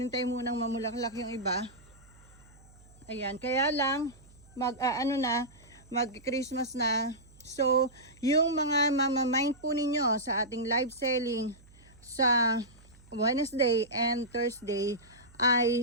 munang mamulaklak yung iba. Ayan, kaya lang mag-Christmas na. So, yung mga mamamind po ninyo sa ating live selling sa Wednesday and Thursday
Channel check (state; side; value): noise; right; hum, 25 dB below the sound